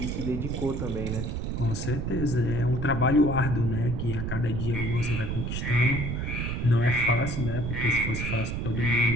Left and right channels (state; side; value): noise; right; rumble, 3 dB below the sound